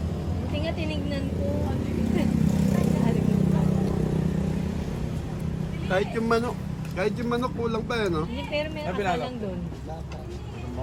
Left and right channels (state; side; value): identical; both; correlation 1.00